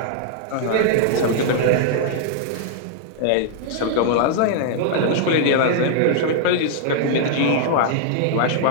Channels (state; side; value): different; both; correlation -0.01